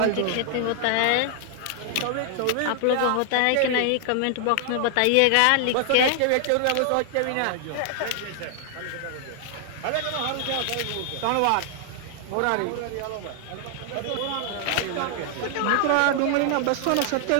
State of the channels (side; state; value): both; different; correlation 0.00